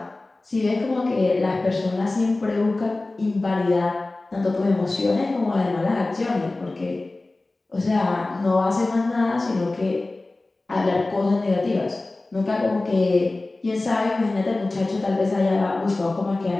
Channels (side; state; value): right; quieter; 3.0 dB